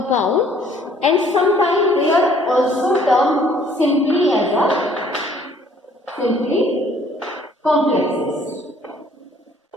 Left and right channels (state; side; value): normal; both; correlation 0.59